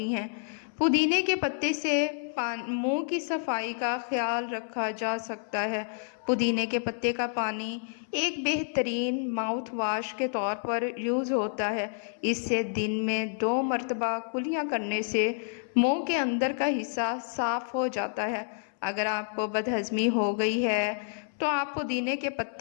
ہیں۔ پودینے کے پتے سے منہ کی صفائی کا خیال رکھا جا سکتا ہے۔ پودینے کے پتے کا پانی ایک بہترین ماؤتھ واش کے طور پر یوز ہوتا ہے۔ اس سے دن میں 2 مرتبہ کلیاں کرنے سے منہ کے اندر کا حصہ صاف ہو جاتا ہے۔ اگر آپ کو بدہضمی ہو گئی ہے تو آپ پودینے کے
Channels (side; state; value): right; silent; 58 dB below the other